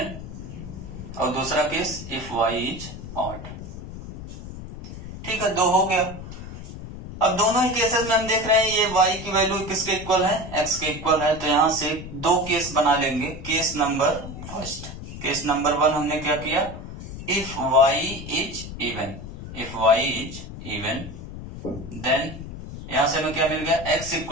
और दूसरा case if y is odd. ठीक है, दो हो गया। अब दोनों ही केसेस में हम देख रहे हैं ये y की वैल्यू किसके इक्वल है, x के इक्वल है, तो यहां से दो केस बना लेंगे। Case number first, case number 1 हमने क्या किया, if y is even, if y is even, then यहां से हमें क्या मिल गया, x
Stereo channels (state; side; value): noise; left; rumble, 11 dB below the sound